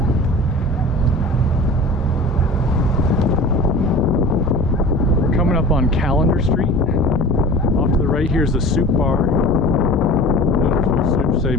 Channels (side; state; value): both; normal; correlation 0.38